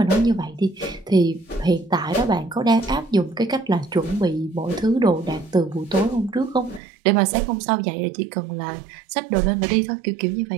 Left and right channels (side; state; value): left; drops out; at 6.8 s